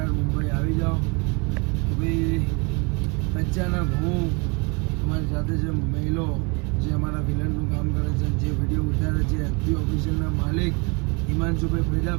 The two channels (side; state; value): left; quieter; 30.6 dB